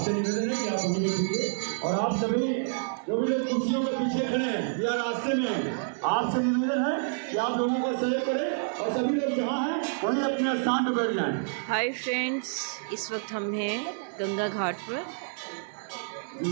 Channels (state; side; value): silent; left; digital silence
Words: निवेदन है कि आप वहीं बैठिए। और आप सभी जो भी लोग कुर्सियों के पीछे खड़े हैं या रास्ते में, आपसे निवेदन है कि आप लोगों को सहयोग करें और सभी लोग जहाँ हैं वहीं अपने स्थान पर बैठ जाएं। हाय फ्रेंड्स, इस वक्त हम हैं गंगा घाट पर